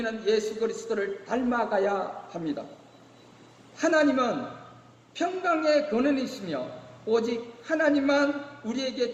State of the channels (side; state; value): both; identical; correlation 1.00